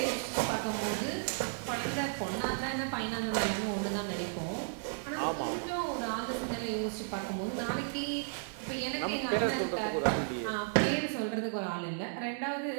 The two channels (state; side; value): silent; left; 55 dB below the other